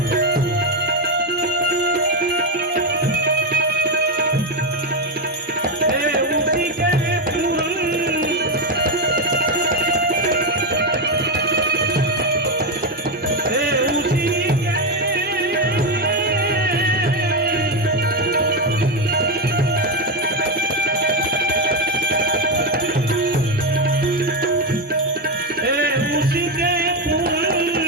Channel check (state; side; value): normal; both; correlation 0.08